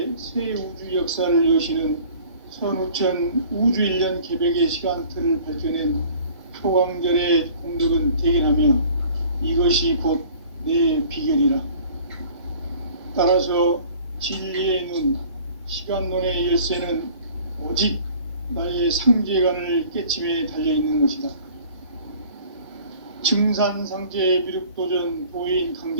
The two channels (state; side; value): inverted; both; correlation -0.49